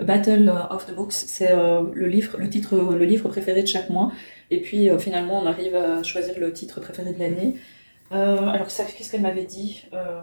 of the Books. C'est le livre préféré de chaque mois. Et puis finalement, on arrive à choisir le titre préféré de l'année. Alors ça, qu'est-ce qu'elle m'avait dit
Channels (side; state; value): both; inverted; correlation -1.00